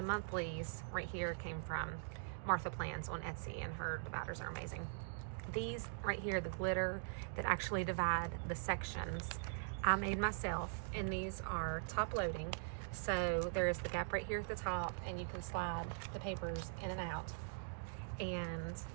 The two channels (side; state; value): left; silent; digital silence